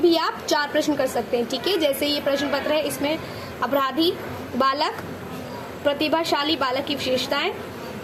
आप 4 प्रश्न कर सकते हैं। ठीक है, जैसे ये प्रश्न पत्र है, इसमें अपराधी बालक, प्रतिभाशाली बालक की विशेषताएं,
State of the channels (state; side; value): identical; both; correlation 1.00